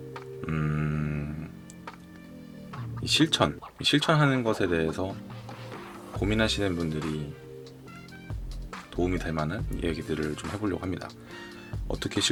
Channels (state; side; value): identical; both; correlation 1.00